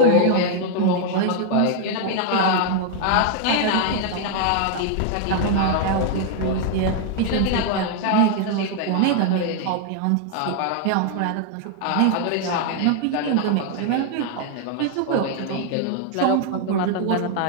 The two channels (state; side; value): different; both; correlation 0.00